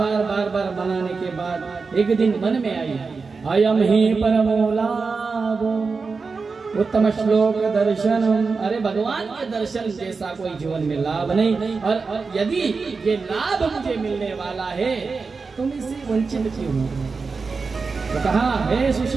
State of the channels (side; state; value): left; quieter; 4.6 dB